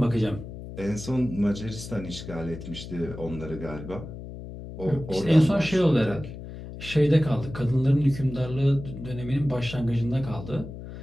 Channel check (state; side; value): noise; left; hum, 11 dB below the sound